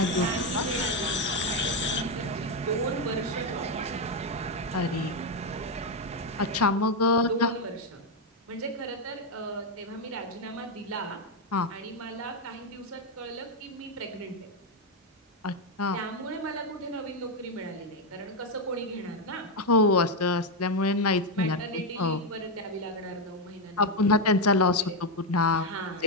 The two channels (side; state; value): both; normal; correlation 0.05